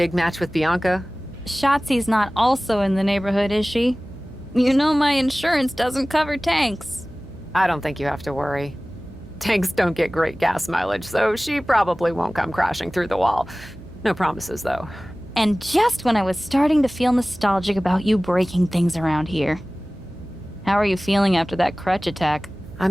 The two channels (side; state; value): right; noise; hum, 19 dB below the sound